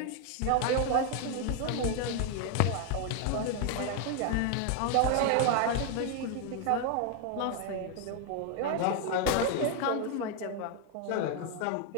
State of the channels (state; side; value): different; both; correlation 0.00